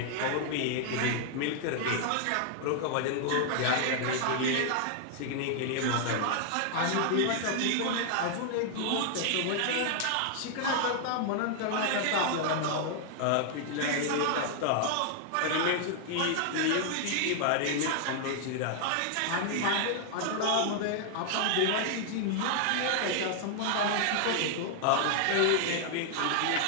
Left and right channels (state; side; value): different; both; correlation 0.00